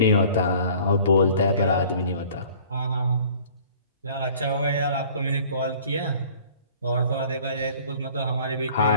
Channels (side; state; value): both; inverted; correlation -0.51